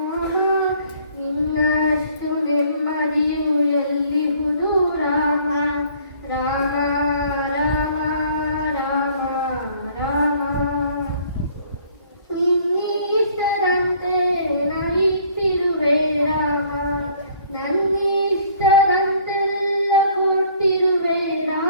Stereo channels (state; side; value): inverted; both; correlation -0.57